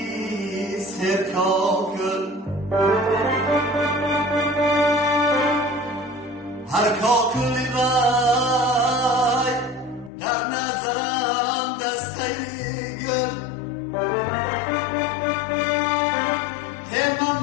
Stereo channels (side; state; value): right; drops out; at 10.1 s